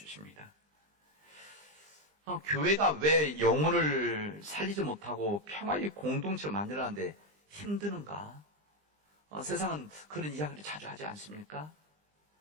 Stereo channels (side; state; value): left; late; 20 ms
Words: 교회가 왜 영혼을 살리지 못하고 평화의 공동체를 만들어내는데 힘드는가? 세상은 그런 이야기를 자주 하지 않습니까?